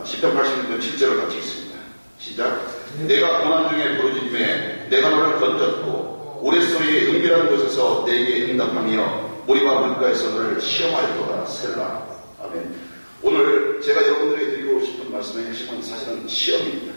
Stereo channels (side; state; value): both; inverted; correlation -1.00